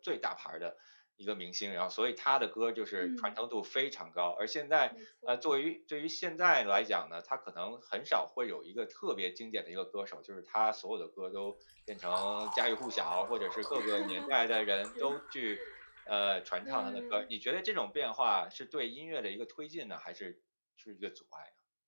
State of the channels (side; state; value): both; inverted; correlation -1.00